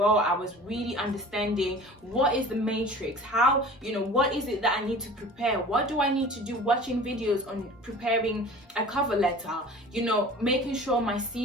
I was really understanding what is the matrix, how, what is it that I need to prepare, what do I need to do, watching videos on preparing a cover letter, making sure my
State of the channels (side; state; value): both; normal; correlation 0.42